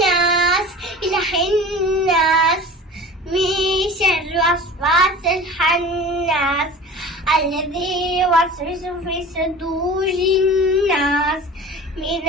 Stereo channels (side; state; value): both; normal; correlation 0.39